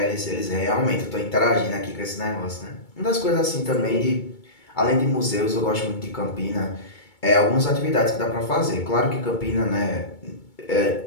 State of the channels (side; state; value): right; late; 2.2 ms